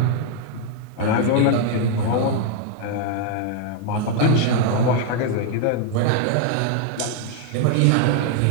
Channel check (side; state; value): both; different; correlation 0.00